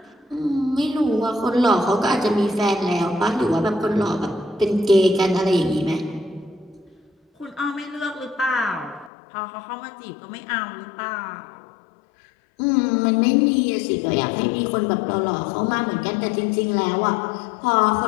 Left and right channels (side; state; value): right; drops out; at 9.1 s